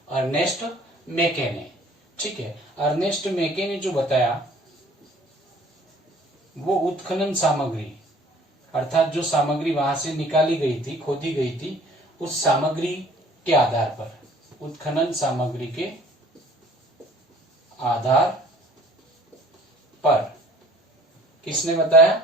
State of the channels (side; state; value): both; normal; correlation 0.53